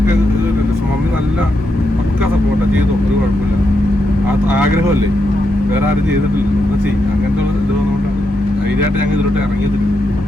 മമ്മി നല്ല പക്ക സപ്പോർട്ടാണ്. ചെയ്തോ ഒരു കുഴപ്പമില്ല, ആ ആഗ്രഹമല്ലേ, വേറെ ആരും ചെയ്തിട്ടില്ല ചെയ്യും. അങ്ങനത്തെ ഇത് വന്നുകൊണ്ടാണ് ധൈര്യമായിട്ട് ഞങ്ങൾ ഇതിലോട്ട് ഇറങ്ങിയത്.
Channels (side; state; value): both; normal; correlation 0.83